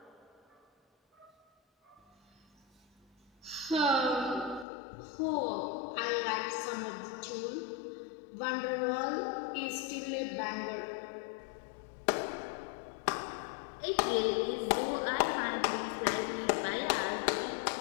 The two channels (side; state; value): right; drops out; at 4.7 s